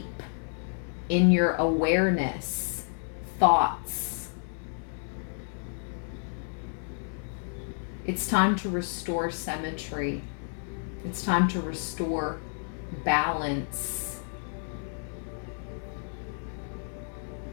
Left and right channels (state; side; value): silent; right; 58 dB below the other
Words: in your awareness, thoughts. It's time to restore symmetry. It's time to restore balance.